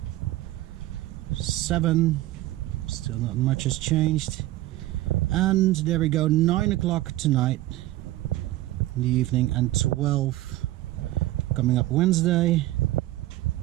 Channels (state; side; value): quieter; left; 16.3 dB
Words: 7, still not much has changed. And there we go, 9 o'clock tonight in the evening, and 12 coming up Wednesday.